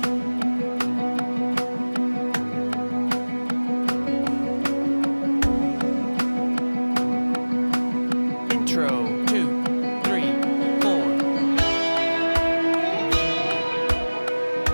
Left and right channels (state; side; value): inverted; both; correlation -1.00